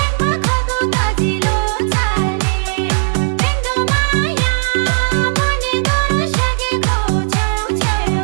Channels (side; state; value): left; silent; digital silence